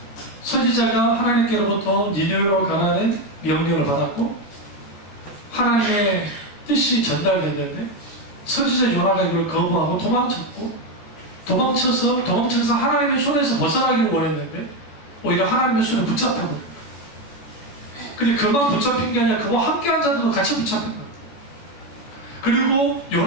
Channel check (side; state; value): right; late; 14 ms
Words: 선지자가 하나님께로부터 니느웨로 가라는 명령을 받았고 하나님의 뜻이 전달됐는데 선지자 요나가 이걸 거부하고 도망쳐서 하나님의 손에서 벗어나기를 원했는데 오히려 하나님의 손에 붙잡혀버린 거예요. 근데 그만 붙잡힌 게 아니라 그와 함께한 자들도 같이 붙잡힌 거예요. 그리고